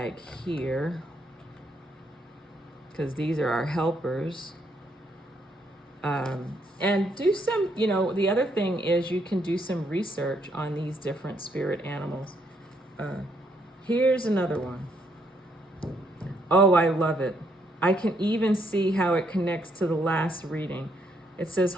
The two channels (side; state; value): both; normal; correlation 0.73